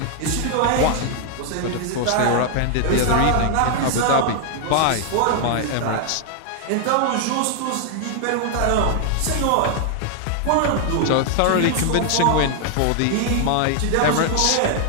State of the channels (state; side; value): different; both; correlation 0.00